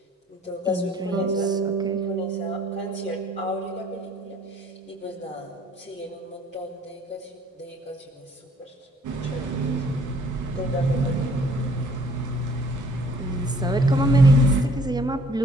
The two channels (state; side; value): normal; both; correlation 0.58